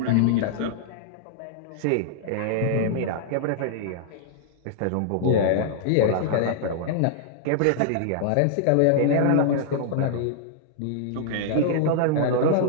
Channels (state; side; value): different; both; correlation -0.01